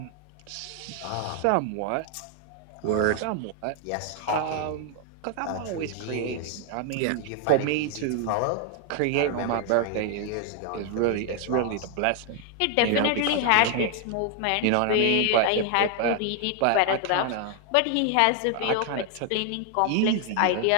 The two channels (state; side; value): different; both; correlation 0.00